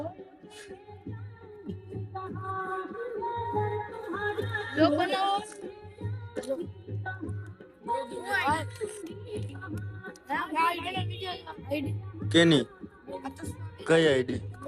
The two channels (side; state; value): both; identical; correlation 1.00